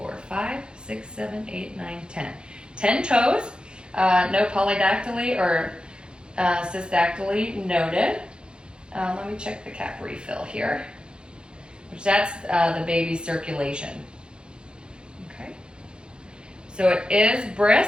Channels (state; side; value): late; left; 0.051 ms